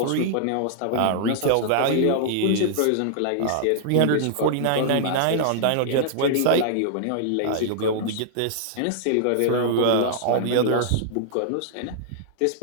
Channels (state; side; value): different; both; correlation -0.01